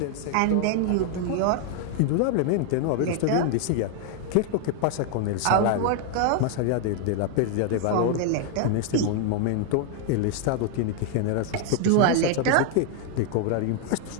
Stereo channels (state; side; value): different; both; correlation 0.00